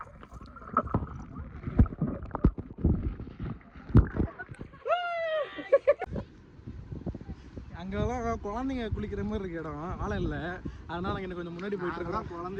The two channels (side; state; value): both; identical; correlation 1.00